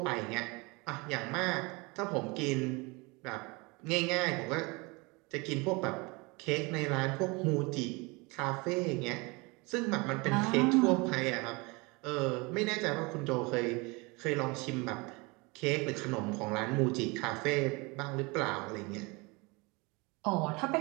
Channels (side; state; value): left; quieter; 26.7 dB